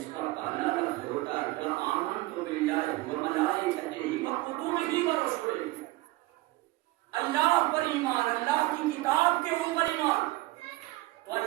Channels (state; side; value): quieter; left; 19.4 dB